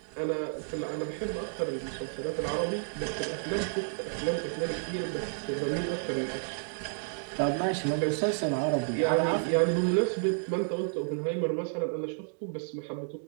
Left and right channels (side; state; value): left; silent; digital silence